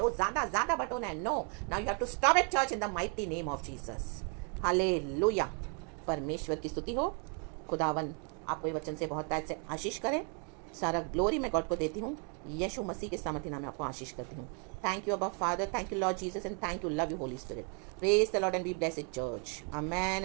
वो ज़्यादा बटोना है। No, now you have to stop it church in the mighty name of Jesus. Hallelujah. परमेश्वर की स्तुति हो। खुदावन आपको ये वचन से बहुत ताज से आशीष करे। सारा ग्लोरी मैं गॉड को देती हूँ, यीशु मसीह के सामर्थ्य नाम में आपको आशीष करती हूँ। थैंक यू अबा father, thank you Lord Jesus and thank you, love you Holi spirit. Praise the Lord and be blessed church. Amen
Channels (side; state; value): left; quieter; 39.1 dB